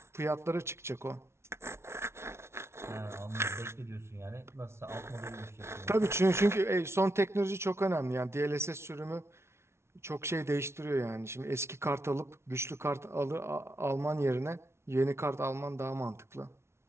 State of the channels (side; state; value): left; late; 0.13 ms